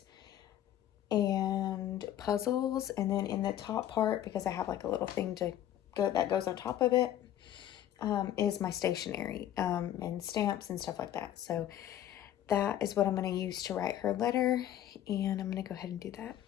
and puzzles. And then in the top part, because I have like a little thing that goes on top of it, is my stationery and stamps and stuff like that. So that is what I'm going to use to write her letter, and I'm going to go ahead and do that.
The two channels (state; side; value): quieter; right; 11.6 dB